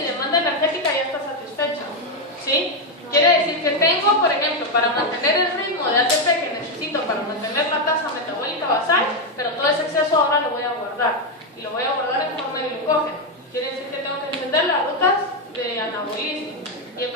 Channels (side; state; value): both; normal; correlation 0.05